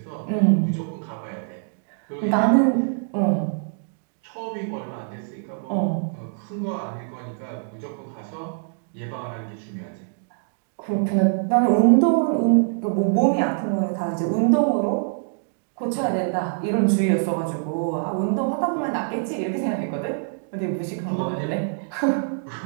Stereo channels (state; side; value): silent; left; digital silence